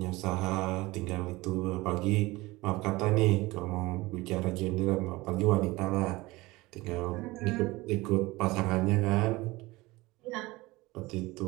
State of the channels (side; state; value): left; quieter; 21.0 dB